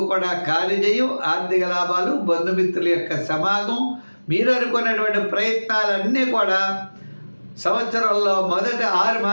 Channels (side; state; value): both; inverted; correlation -1.00